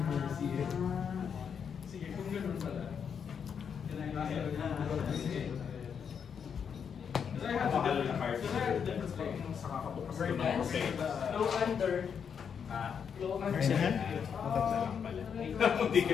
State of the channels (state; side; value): quieter; right; 7.1 dB